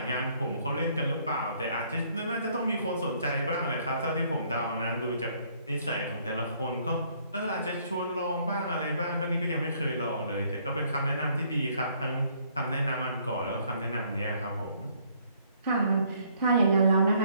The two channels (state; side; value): inverted; both; correlation -0.65